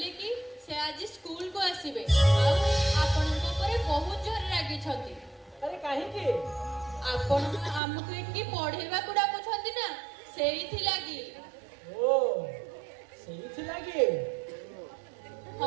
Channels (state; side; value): drops out; left; at 7.8 s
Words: କି ସେ ଆଜି ସ୍କୁଲକୁ ଆସିବେ ଆଉ ଆପଣଙ୍କ ଉପରେ ବହୁତ ଜୋରରେ ରାଗିଛନ୍ତି। ଆରେ କାହିଁକି? ଆପଣ ଆମକୁ ଏଠି ପଢେଇବାକୁ ଡାକୁଛନ୍ତି ନା, ସେଇଥିଲାଗି। ଓ ସେଇଥିଲାଗି?